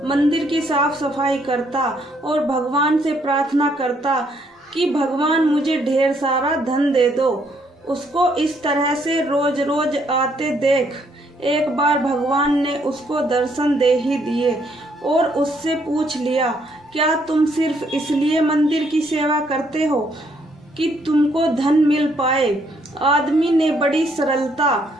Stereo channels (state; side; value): normal; both; correlation 0.70